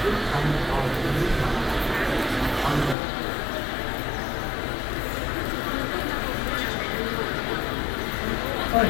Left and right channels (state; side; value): drops out; right; at 3.0 s